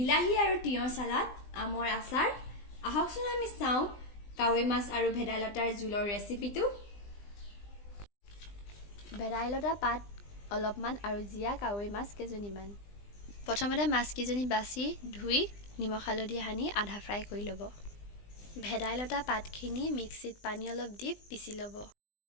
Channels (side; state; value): right; late; 20 ms